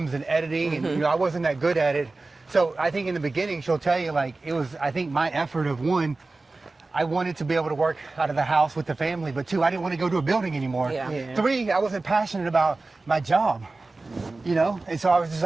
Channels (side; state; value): left; quieter; 3.4 dB